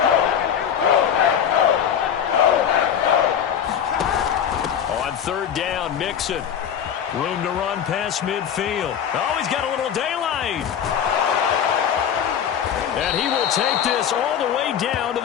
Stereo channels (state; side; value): quieter; right; 8.6 dB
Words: On third down, Mixon. Room to run past midfield. Oh, he's got a little daylight. And he will take this all the way down to